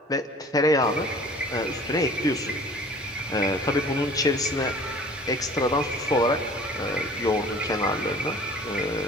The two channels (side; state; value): both; normal; correlation 0.47